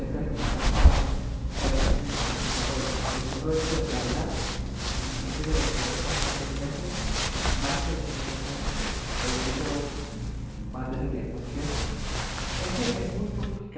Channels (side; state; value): both; identical; correlation 1.00